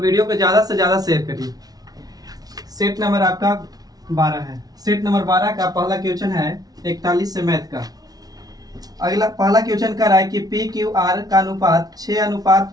को ज़्यादा से ज़्यादा शेयर करिए। सेट नंबर आपका 12 है। सेट नंबर 12 का पहला क्वेश्चन है 41 से मैथ का। अगला पहला क्वेश्चन कर रहा है कि पी क्यू आर का अनुपात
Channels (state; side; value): late; left; 0.19 ms